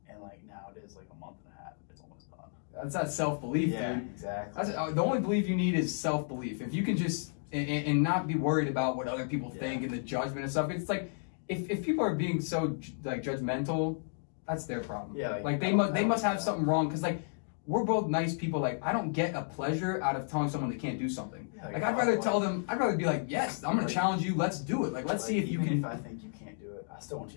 And like now it is like a month and a half. It's almost done. That's that self-belief, yeah, dude. Exactly. The only belief you need is self-belief. If you can just and not be worried about what other people think and the judgment and stuff. It's like if people are being so like judgmental, that's their problem. Yeah. Like they must have something wrong because like we're both nice people. Like I don't get a pleasure out of telling someone they can't do something. Yeah, like I'd rather tell them. I'd rather be like, yes, I'm gonna challenge you. Let's do it. Like let's see if you can. If I think you can't do it, I still want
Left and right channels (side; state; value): right; silent; digital silence